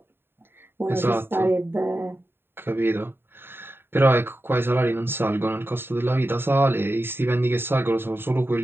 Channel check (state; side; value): late; left; 0.11 ms